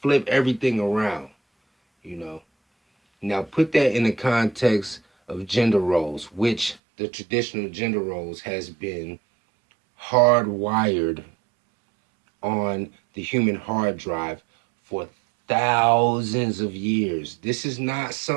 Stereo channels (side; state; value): left; drops out; at 6.8 s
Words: flip everything around, you know. Now put that in the context of gender roles, which the traditional gender roles has been hardwired on the human hard drive for thousands of years. This is not